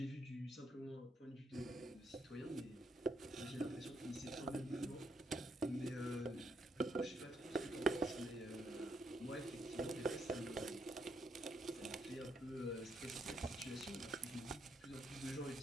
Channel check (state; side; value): normal; both; correlation 0.77